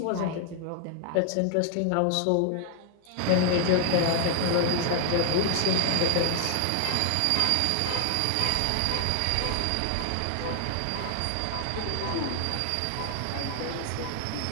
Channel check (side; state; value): both; different; correlation 0.00